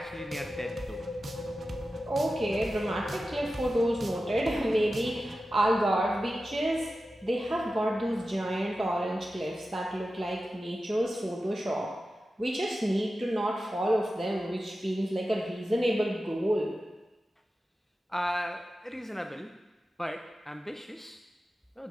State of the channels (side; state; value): both; normal; correlation 0.93